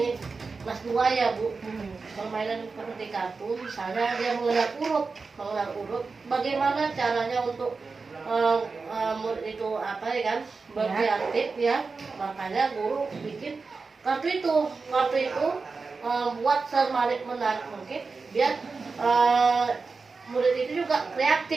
kelas 2 ya Bu. Permainan seperti kartu. Misalnya dia mengenal huruf. Bagaimana caranya untuk murid itu apa ya kan berkreatif ya, makanya guru bikin kartu itu buat semenarik mungkin biar murid itu juga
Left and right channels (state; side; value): quieter; left; 4.4 dB